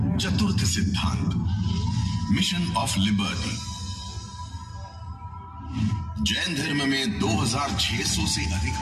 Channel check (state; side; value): identical; both; correlation 1.00